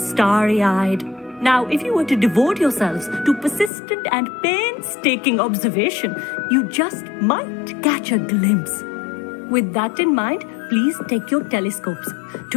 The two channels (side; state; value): right; drops out; at 3.7 s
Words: Now, if you were to devote yourselves to persistent and painstaking observation, you just might catch a glimpse. With that in mind, please take your telescopes.